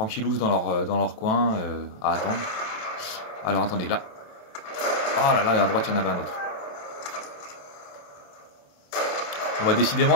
dans leur coin à attendre. Alors attendez, là. Oh là là, et à droite, il y en avait un autre. Bon, bah,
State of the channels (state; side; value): late; right; 27 ms